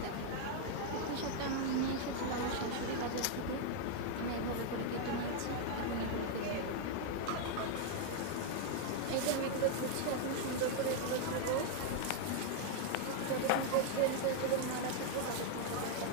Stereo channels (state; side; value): different; both; correlation 0.00